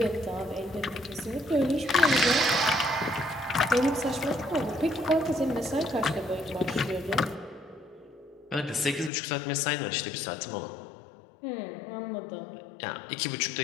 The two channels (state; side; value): drops out; right; at 9.1 s